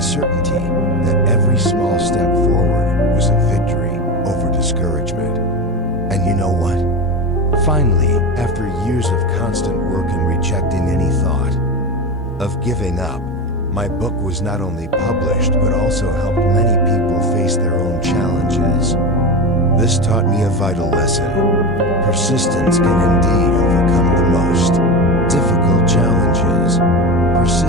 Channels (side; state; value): both; normal; correlation 0.22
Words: certainty that every small step forward was a victory over discouragement. And you know what? Finally, after years of constant work and rejecting any thought of giving up, my book was not only published but also helped many people face their own challenges. This taught me a vital lesson. Persistence can indeed overcome the most difficult challenges.